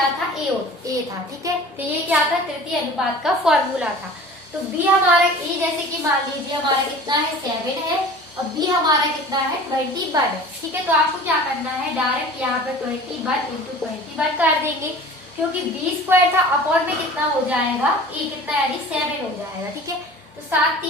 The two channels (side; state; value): both; normal; correlation 0.42